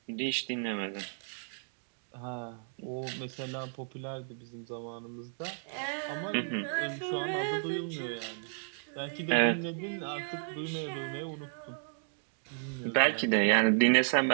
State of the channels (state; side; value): silent; left; digital silence